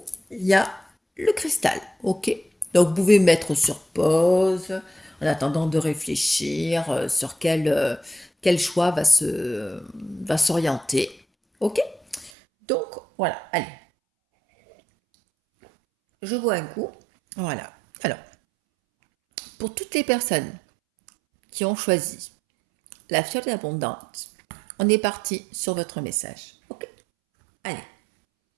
il y a le cristal, ok? Donc vous pouvez mettre sur pause en attendant de réfléchir sur quel choix va s'orienter, ok? Donc voilà, allez, je bois un coup, voilà. Alors, pour toutes les personnes qui ont choisi la fiole d'abondance, on est parti sur votre message, ok? Allez,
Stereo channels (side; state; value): left; drops out; at 12.3 s